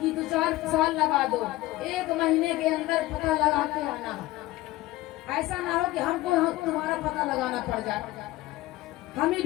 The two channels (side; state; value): right; quieter; 18.0 dB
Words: कि 2-4 साल लगा दो, 1 महीने के अंदर पता लगा के आना। ऐसा ना हो कि हमको तुम्हारा पता लगाना पड़ जाए, हम ही